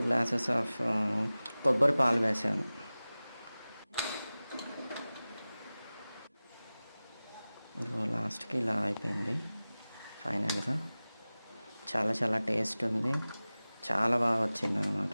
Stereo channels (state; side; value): inverted; both; correlation -0.97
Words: గ్లాసెస్ ఆఫ్ కొబ్బరి పాలు వేసాను. ఇదిగో లాస్ట్కి ఇలా అయిపోయింది ఫైనల్గా. చాలా టేస్ట్ ఉంది, చాలా బాగా వచ్చింది